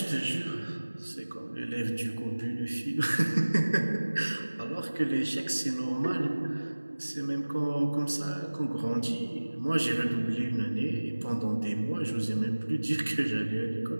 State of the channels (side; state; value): both; inverted; correlation -1.00